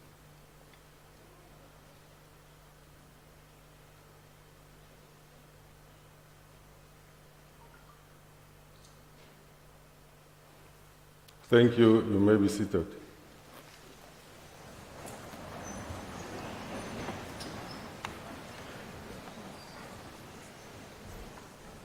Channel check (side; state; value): both; identical; correlation 1.00